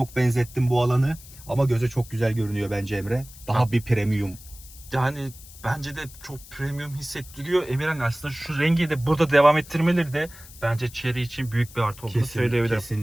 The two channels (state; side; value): noise; left; hiss, 19 dB below the sound